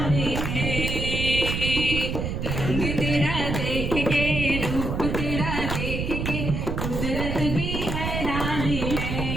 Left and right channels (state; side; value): noise; right; rumble, 2 dB below the sound